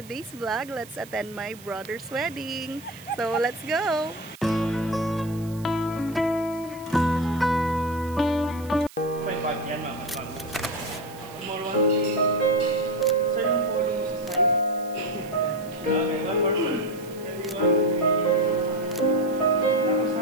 today's vlog. Let's attend my brother's wedding. So let's go!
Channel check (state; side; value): noise; right; hiss, 21 dB below the sound